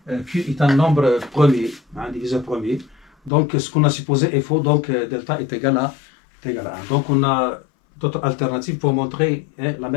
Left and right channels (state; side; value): drops out; right; at 3.3 s